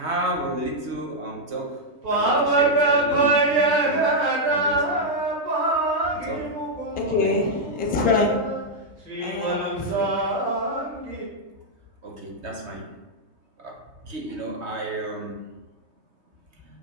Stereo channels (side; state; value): left; late; 3.2 ms